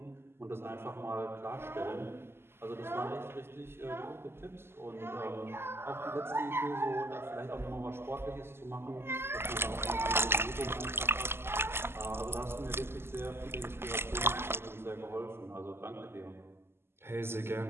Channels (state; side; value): late; left; 0.12 ms